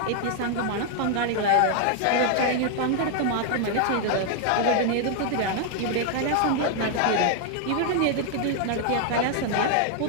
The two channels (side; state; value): both; different; correlation 0.00